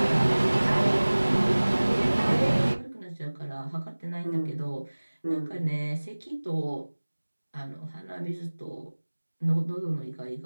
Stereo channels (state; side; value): inverted; both; correlation -1.00